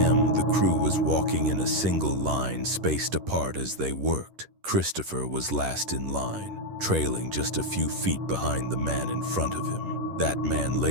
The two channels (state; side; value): late; left; 11 ms